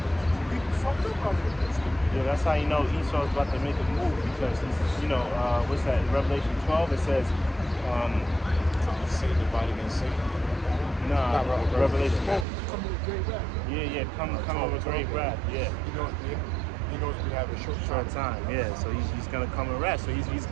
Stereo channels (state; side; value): drops out; left; at 12.5 s